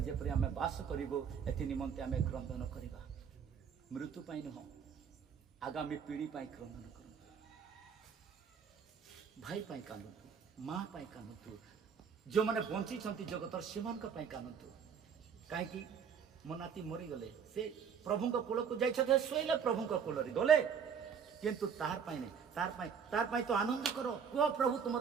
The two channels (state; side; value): quieter; left; 7.0 dB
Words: जेपरि आमे वास करिबो, एथि निमंते आमे क्रंदन करिबा। मृत्यु पाई नुह, आगामी पीढ़ी पाई क्रंदन करंतु। भाई पाई कांदंतु, माँ पाई कांदंतु, जो माने बंची छंती जगतर सेमान का पाई कांदंतु। काहे कि मो नाती मरी गले, से प्रभु को कोल को जाइछथे, सोइले प्रभु को कोल रे गले, किंतु तार पाई नहीं, तार पाई तो आनंद करो। को प्रभु तुम